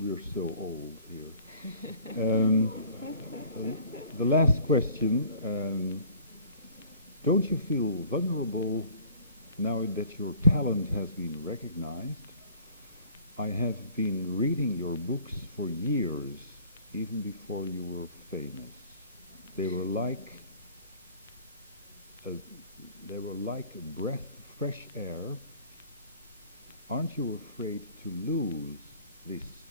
so old here. The last question, don't you feel vulnerable now that your talent has been recognized? I have been reading your books for years, even before you were famous. They were like a breath of fresh air. Aren't you afraid to lose this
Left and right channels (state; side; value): inverted; both; correlation -0.51